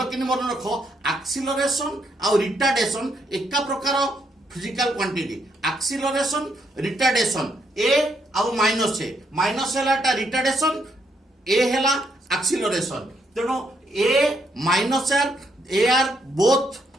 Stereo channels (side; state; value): both; normal; correlation 0.75